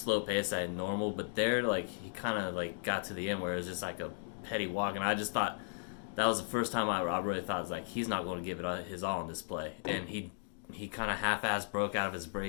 pace at normal, but there, he kind of, got to the end where it was just like a petty walk, and I just thought that was the first time I really thought, he's not going to give it his all on this play. And he kind of half-assed broke out of his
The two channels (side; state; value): right; silent; digital silence